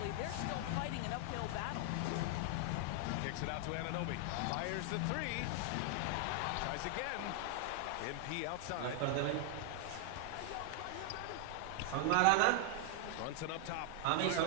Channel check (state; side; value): different; both; correlation 0.00